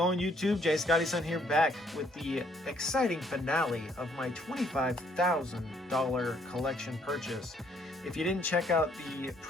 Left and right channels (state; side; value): normal; both; correlation 0.66